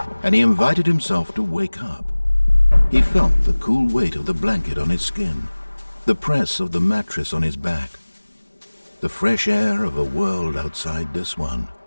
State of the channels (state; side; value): inverted; both; correlation -1.00